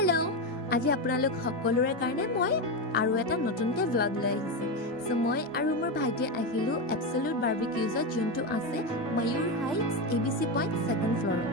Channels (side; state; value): both; normal; correlation 0.13